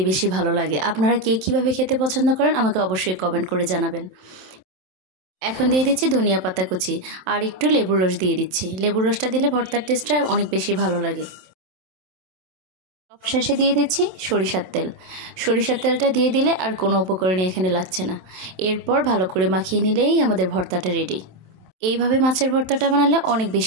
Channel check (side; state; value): left; late; 27 ms